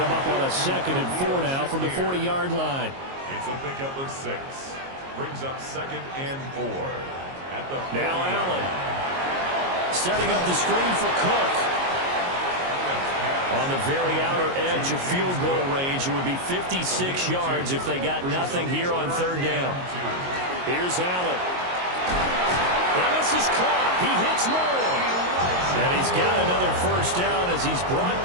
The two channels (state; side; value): late; left; 22 ms